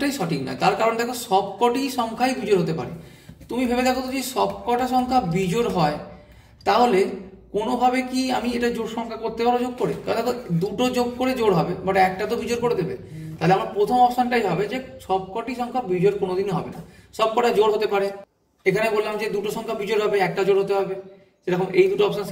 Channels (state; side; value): identical; both; correlation 1.00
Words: সঠিক নয়, তার কারণ দেখো সবকটি সংখ্যাই বিজোড় হতে পারে। তুমি ভেবে দেখো তো, যদি সবকটা সংখ্যা বিজোড় হয়, তাহলে কোনোভাবে কি আমি এটা জোড় সংখ্যা করতে পারবো যোগ করে? কারণ দেখো 2টো যোগ করে জোড় হবে, বাট একটা তো বিজোড় করে দেবে। তাহলে আমার প্রথম অপশনটাই হবে যে সবকটি সংখ্যা বিজোড় কোনোদিনই হবে না, সবকটা জোড় হতে পারে। এখানে বললাম যে 2টো সংখ্যা বিজোড় হবে, একটা জোড় হতে হবে, সেরকম এই দুটো অপশন